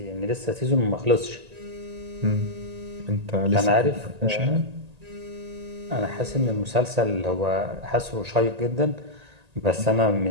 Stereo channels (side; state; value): left; late; 1.8 ms